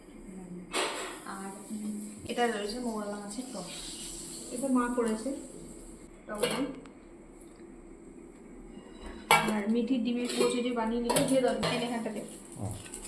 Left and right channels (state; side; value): identical; both; correlation 1.00